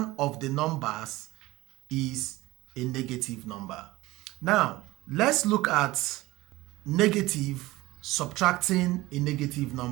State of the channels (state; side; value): quieter; left; 19.0 dB